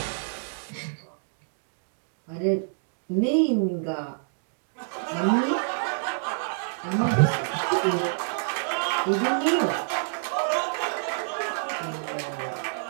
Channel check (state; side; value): silent; left; digital silence